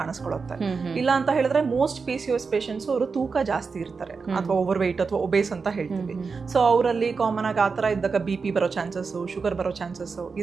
ಇಲ್ಲ ಅಂತ ಹೇಳಿದ್ರೆ ಮೋಸ್ಟ್ PCOS ಪೇಷಂಟ್ಸ್ ಅವರು ತೂಕ ಜಾಸ್ತಿ ಇರ್ತಾರೆ ಅಥವಾ ಓವರ್ ವೆಯ್ಟ್ ಅಥವಾ ಒಬೇಸ್ ಅಂತ ಹೇಳ್ತೀವಿ. ಸೊ ಅವರಲ್ಲಿ ಕಾಮನ್ ಆಗಿ ಆತರ ಇದ್ದಾಗ BP ಬರೋ ಚಾನ್ಸಸ್, ಶುಗರ್ ಬರೋ ಚಾನ್ಸಸ್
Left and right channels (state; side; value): quieter; left; 4.9 dB